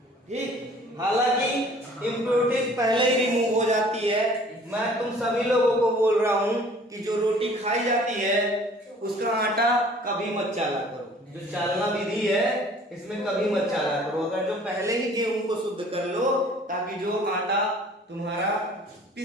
ठीक, हालांकि इम्प्योरिटीज पहले ही रिमूव हो जाती है। मैं तुम सभी लोगों को बोल रहा हूं कि जो रोटी खाई जाती है उसका आटा कभी मत चाला करो, जो चालना विधि है इसमें कभी मत चाला करो। अगर जो पहले ही गेहूं को शुद्ध कर लो, ताकि जो आटा तुम्हारा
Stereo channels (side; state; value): both; normal; correlation 0.52